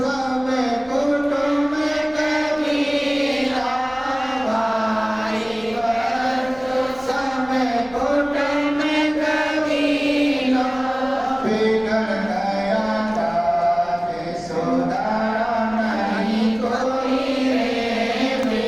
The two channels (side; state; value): left; noise; rumble, 23 dB below the sound